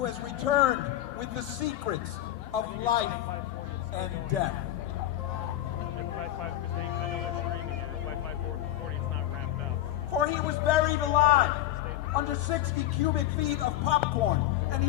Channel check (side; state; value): right; quieter; 13.5 dB